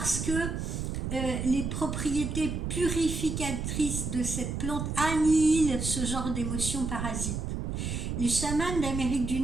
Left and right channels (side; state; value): right; noise; rumble, 3 dB below the sound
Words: que les propriétés purificatrices de cette plante annihilent ce genre d'émotions parasites. Les chamans d'Amérique du